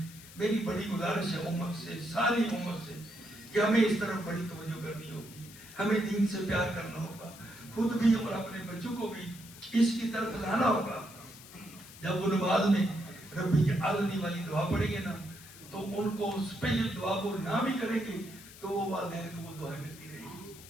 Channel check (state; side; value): noise; left; hiss, 18 dB below the sound